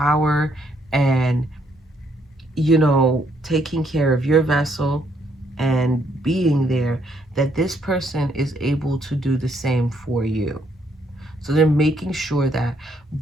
and, you know, taking care of your vessel and being there, that this person is able to do the same for you. So they're making sure that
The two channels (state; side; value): normal; both; correlation 0.71